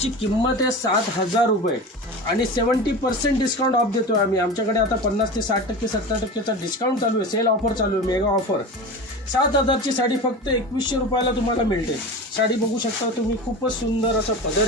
किंमत आहे 7,000 रुपये आणि 70% डिस्काउंट ऑफ देतो आम्ही। आमच्याकडे आता 50 ते 60% 70%चा डिस्काउंट चालू आहे, सेल ऑफर चालू आहे, मेगा ऑफर। 7,000 ची साडी फक्त 2100 रुपयाला तुम्हाला मिळते। साडी बघू शकता तुम्ही, खूपच सुंदर असं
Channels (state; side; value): normal; both; correlation 0.29